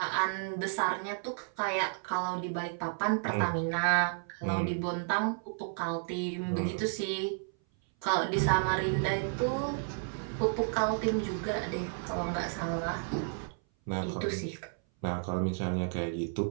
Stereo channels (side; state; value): left; silent; 56 dB below the other